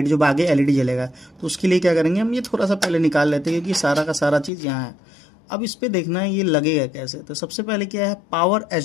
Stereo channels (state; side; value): drops out; right; at 4.5 s